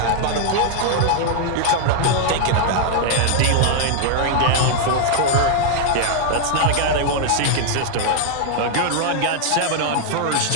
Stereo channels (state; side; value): different; both; correlation 0.00